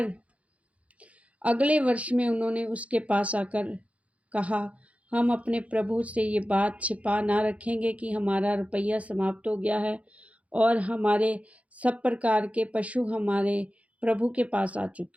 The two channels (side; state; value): left; late; 0.065 ms